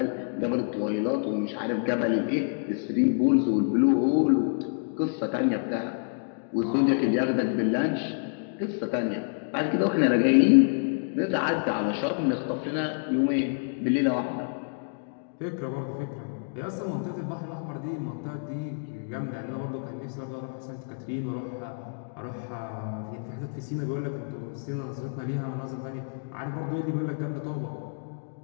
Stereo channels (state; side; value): silent; right; digital silence